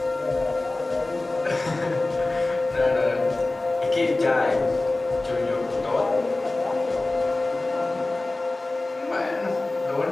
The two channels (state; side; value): quieter; right; 3.0 dB